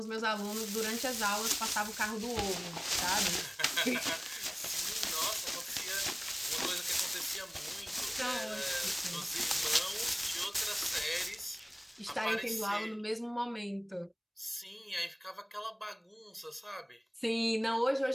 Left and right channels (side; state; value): both; identical; correlation 1.00